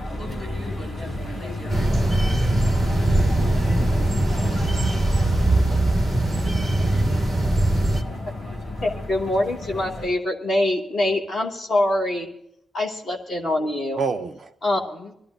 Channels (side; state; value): both; normal; correlation 0.90